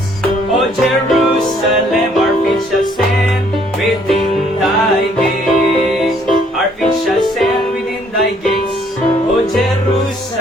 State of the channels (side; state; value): both; normal; correlation 0.64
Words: O Jerusalem. Our feet shall stand within thy gates. Our feet shall stand within thy gates, O